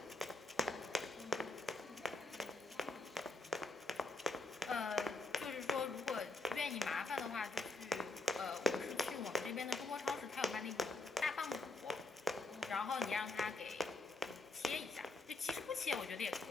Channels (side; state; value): right; quieter; 3.0 dB